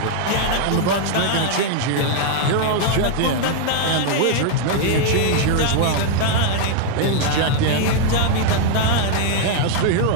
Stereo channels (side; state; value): both; different; correlation 0.00